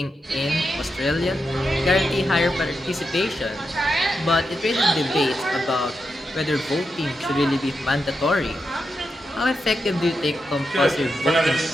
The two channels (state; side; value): normal; both; correlation 0.87